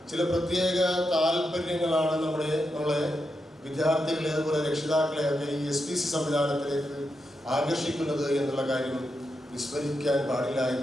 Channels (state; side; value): normal; both; correlation 0.86